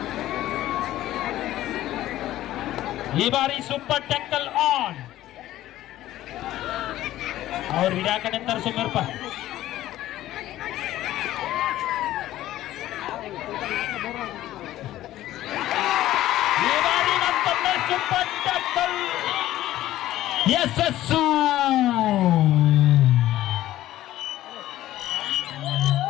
ಈ ಬಾರಿ ಸೂಪರ್ ಟ್ಯಾಕಲ್ ಆನ್. ಅವ್ರು ಹಿಡಿಯಾಕಡೆ ಅಂತಾರೆ ಸುಮ್ಮರ್ಪ. ಈ ಬಾರಿ ಮತ್ತೊಮ್ಮೆ ಸೂಪರ್ ಟ್ಯಾಕಲ್ ಯಶಸ್ಸು.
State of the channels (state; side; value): quieter; right; 14.4 dB